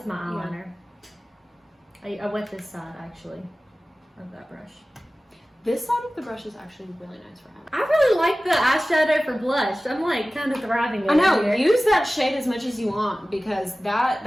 my yeah. eyeliner. I wet this side, actually, of that brush. This side of the brush is actually really nice for having. I really like the eyeshadow for blush. I'm like kind of thriving over I know. here. Use that shade as much as you want because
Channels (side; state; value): both; normal; correlation 0.97